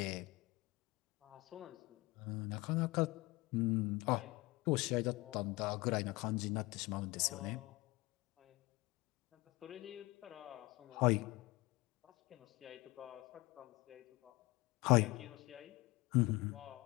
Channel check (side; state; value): right; quieter; 22.0 dB